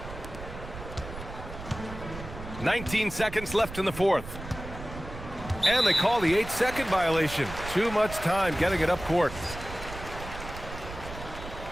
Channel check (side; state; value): right; noise; rumble, 11 dB below the sound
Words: 19 seconds left in the fourth. And they call the 8-second violation. Too much time getting it up court.